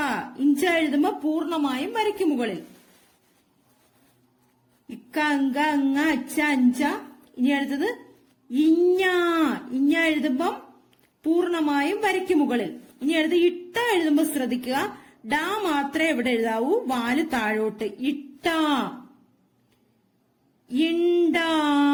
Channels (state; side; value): identical; both; correlation 1.00